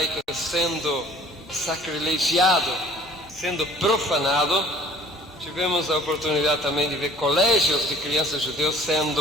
sendo sacrilegiado, sendo profanado. Tivemos a oportunidade também de ver colégios de crianças judeus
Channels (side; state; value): both; normal; correlation 0.52